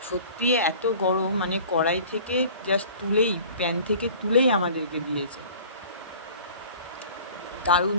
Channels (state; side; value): inverted; both; correlation -0.45